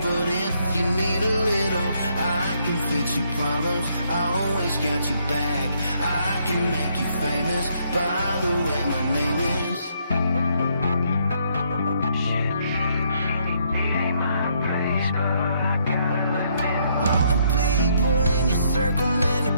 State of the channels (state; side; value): inverted; both; correlation -0.71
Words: but if you need a little, I can fix your problems, I always got you back. I can make you famous, by the way my name is. All the people in your circle, man,